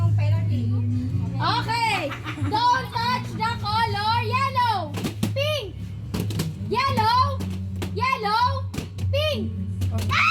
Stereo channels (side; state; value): both; identical; correlation 1.00